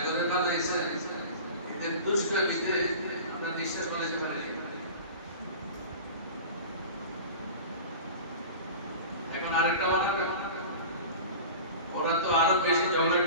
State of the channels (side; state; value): both; inverted; correlation -0.35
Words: বানাইছে এদের দুষ্কর্মীতে আমরা নিঃশ্বাস বলাতে পারি এখন আরেকটা বানাবে ওরা তো আরো বেশি